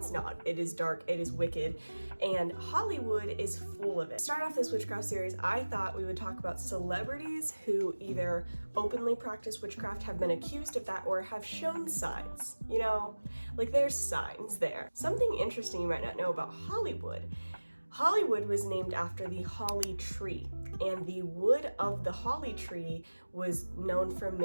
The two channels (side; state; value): both; inverted; correlation -1.00